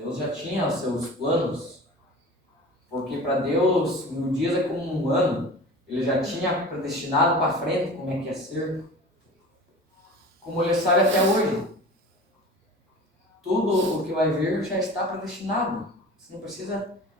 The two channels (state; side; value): normal; both; correlation 0.37